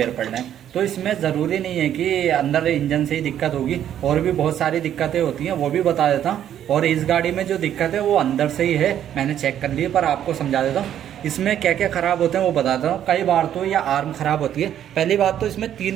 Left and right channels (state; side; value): quieter; left; 10.5 dB